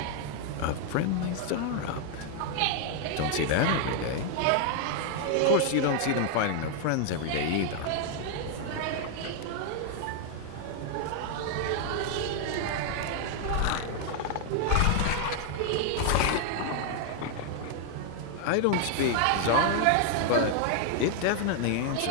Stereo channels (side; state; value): both; different; correlation 0.00